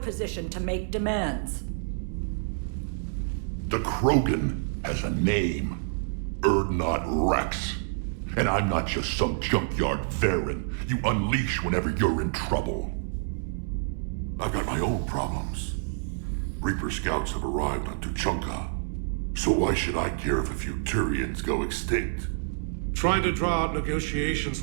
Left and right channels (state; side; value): silent; left; digital silence